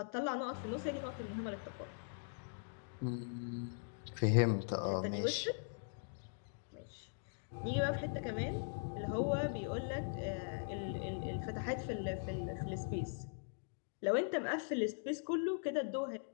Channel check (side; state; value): right; silent; digital silence